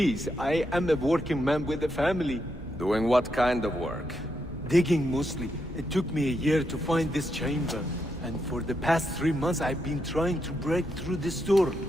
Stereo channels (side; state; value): both; normal; correlation 0.82